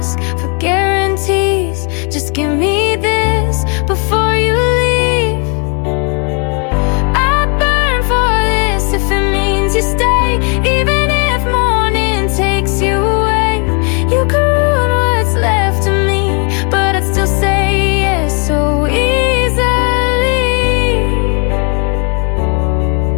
for guarantees, just give me this before you leave. You stay, even if morning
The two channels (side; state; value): right; quieter; 36.7 dB